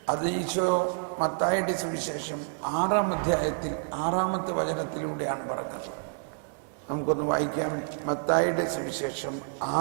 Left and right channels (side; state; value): left; silent; 59 dB below the other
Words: അത് ഈശോ മത്തായിയുടെ സുവിശേഷം 6-ാം അധ്യായത്തിൽ 6-ാമത്തെ വചനത്തിലൂടെയാണ് പറഞ്ഞത്. നമുക്കൊന്ന് വായിക്കാം. മത്തായിയുടെ സുവിശേഷം